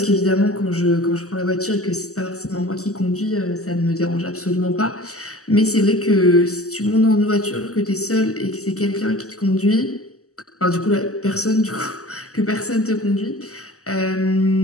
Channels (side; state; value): right; late; 0.66 ms